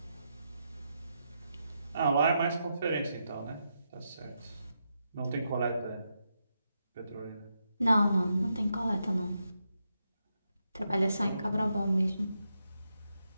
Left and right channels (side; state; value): both; inverted; correlation -0.84